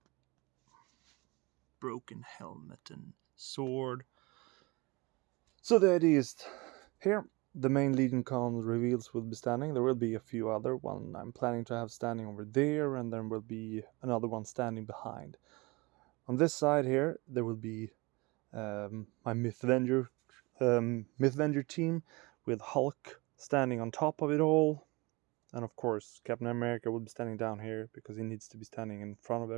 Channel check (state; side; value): quieter; left; 25.1 dB